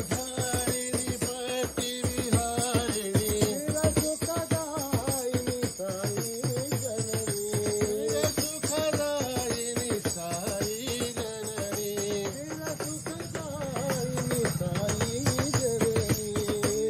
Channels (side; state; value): both; identical; correlation 1.00